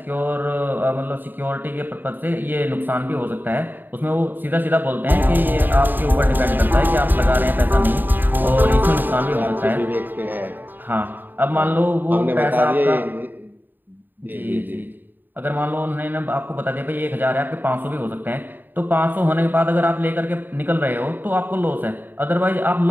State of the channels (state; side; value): late; left; 0.091 ms